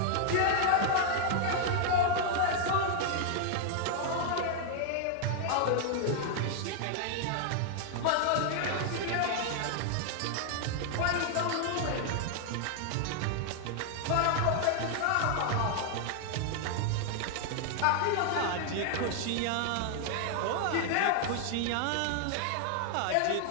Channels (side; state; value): both; different; correlation 0.00